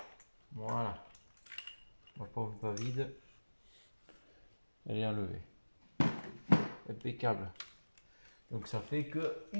Voilà. Ma pompe pas vide. Elle est enlevée. Impeccable. Donc ça fait que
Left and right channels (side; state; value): both; inverted; correlation -1.00